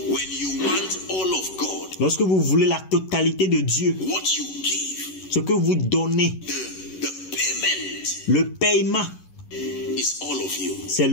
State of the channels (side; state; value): right; late; 11 ms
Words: you want all of God, Lorsque vous voulez la totalité de Dieu, what you give, ce que vous donnez, the payment le paiement, is all of you. c'est